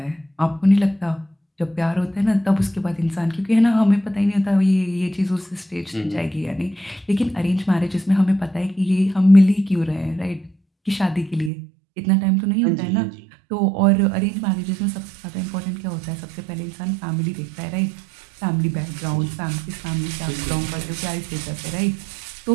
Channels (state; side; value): drops out; left; at 11.5 s